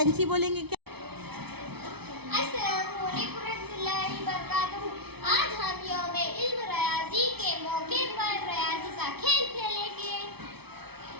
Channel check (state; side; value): late; left; 0.98 ms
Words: बोलेंगे क्या? अस्सलामु अलैकुम रहमतुल्लाहि व बरकातुहू। आज हम यौम इल्म रियाज़ी के मौके पर रियाज़ी का खेल खेलेंगे।